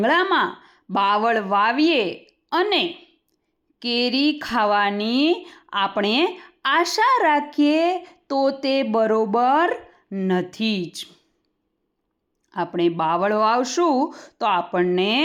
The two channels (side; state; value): both; identical; correlation 1.00